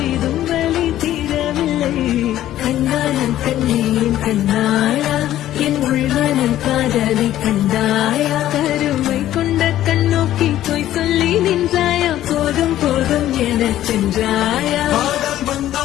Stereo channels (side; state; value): right; quieter; 13.1 dB